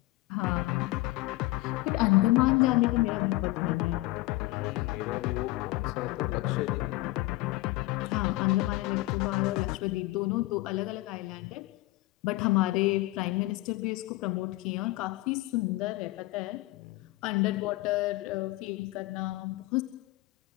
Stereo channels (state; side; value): quieter; right; 19.7 dB